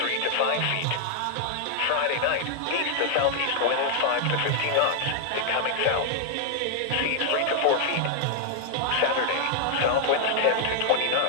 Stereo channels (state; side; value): different; both; correlation 0.00